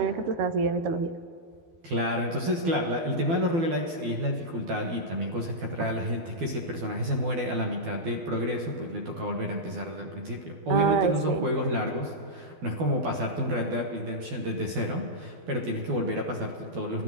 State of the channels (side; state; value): left; late; 12 ms